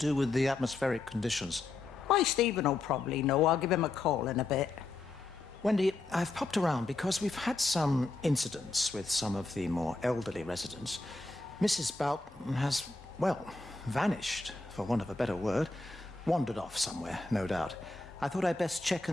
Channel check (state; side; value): quieter; right; 3.4 dB